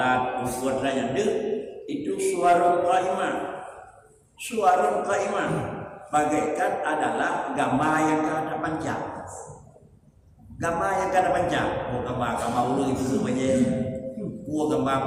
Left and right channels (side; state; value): both; identical; correlation 1.00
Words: puasa dan itu suwarun qaimah. Suwarun qaimah bagaikan adalah gambar yang kada panjang. Gambar yang kada panjang. Gambar ulu itu sebenarnya.